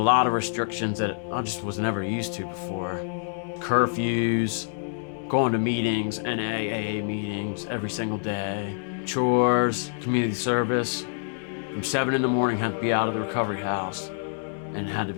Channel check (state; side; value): silent; right; digital silence